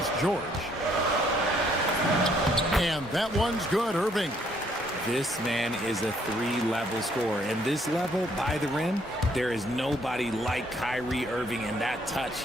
George. And that one's good, Irving. This man is a 3-level scorer. And this level, by the rim, there is nobody like Kyrie Irving and that touch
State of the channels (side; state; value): both; normal; correlation 0.67